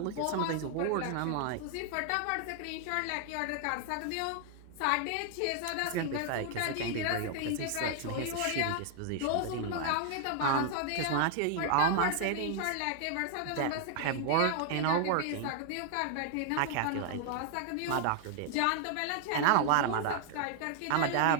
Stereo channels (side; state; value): both; different; correlation 0.00